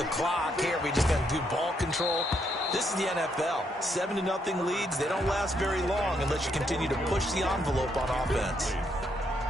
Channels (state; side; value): normal; both; correlation 0.75